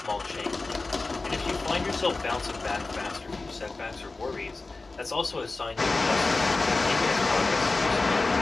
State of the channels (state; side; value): quieter; right; 3.5 dB